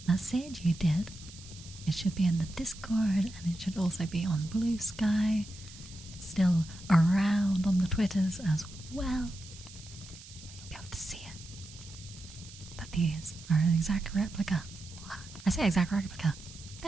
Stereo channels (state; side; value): noise; right; hiss, 17 dB below the sound